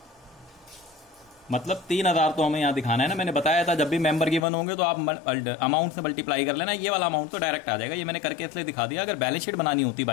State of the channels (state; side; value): drops out; right; at 4.5 s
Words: मतलब 3000 तो हमें यहाँ दिखाना है ना, मैंने बताया था जब भी मेंबर गिवन होंगे तो आप अमाउंट से मल्टीप्लाई कर लेना, ये वाला अमाउंट तो डायरेक्ट आ जाएगा। ये मैंने करके इसलिए दिखा दिया, अगर बैलेंस शीट बनानी होती